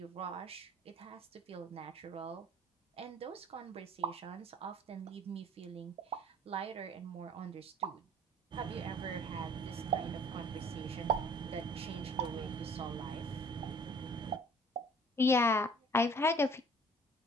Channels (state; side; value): normal; both; correlation 0.51